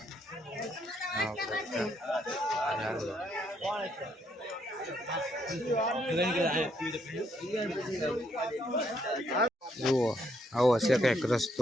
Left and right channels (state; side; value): normal; both; correlation 0.73